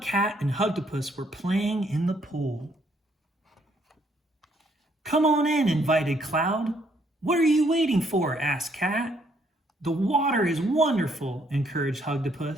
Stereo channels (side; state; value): both; normal; correlation 0.69